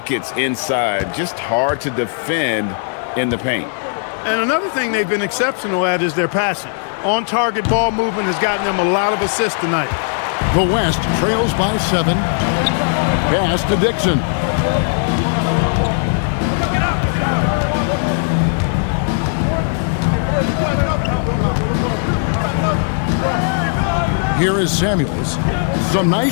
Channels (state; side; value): silent; right; digital silence